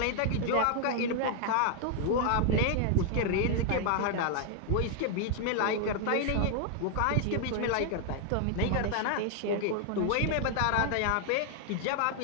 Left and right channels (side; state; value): both; different; correlation 0.00